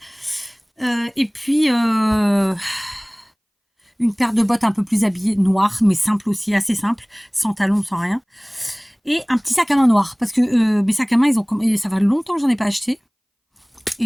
Et puis... une paire de bottes un peu plus habillées, noires, mais simple aussi, assez simple, sans talons, sans rien. Et un petit sac à main noir, parce que mes sacs à main, ça fait longtemps que j'en ai pas acheté.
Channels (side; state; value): both; identical; correlation 1.00